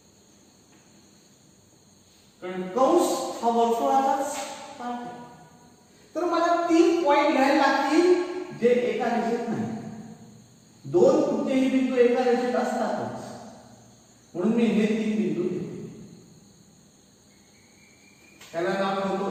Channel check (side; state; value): both; identical; correlation 1.00